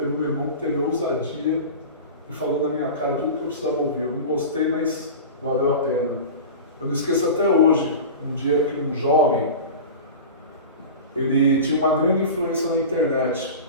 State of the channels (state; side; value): inverted; both; correlation -0.32